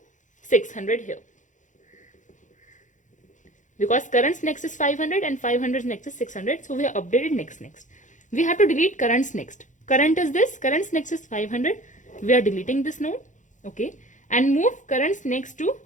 600 here. Because current's next is 500 and 500's next is 600. So we have updated next. We have to delete current's next. Current is this. Current's next is 500. We are deleting this node. Okay. And move current's next to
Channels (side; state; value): right; late; 0.36 ms